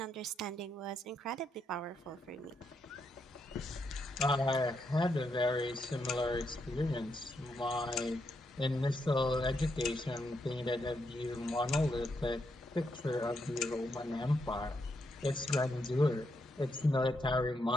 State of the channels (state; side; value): normal; both; correlation 0.80